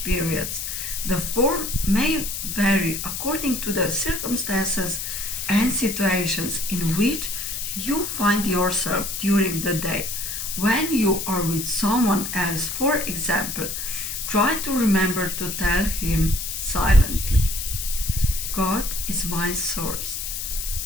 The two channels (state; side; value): noise; left; hiss, 5 dB below the sound